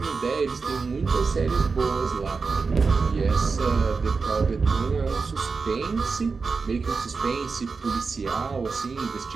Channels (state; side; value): quieter; left; 4.6 dB